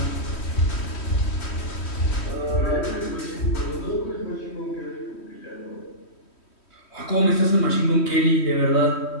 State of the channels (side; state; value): right; late; 3.1 ms